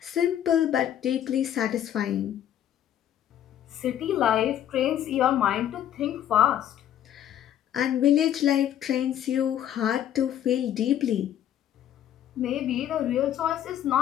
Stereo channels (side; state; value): right; quieter; 10.8 dB